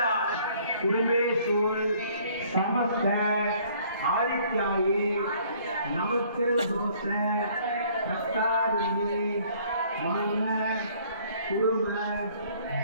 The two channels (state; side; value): inverted; both; correlation -0.59